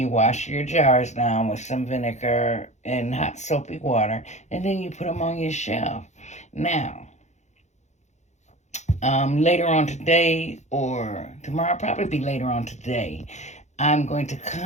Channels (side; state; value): right; late; 0.33 ms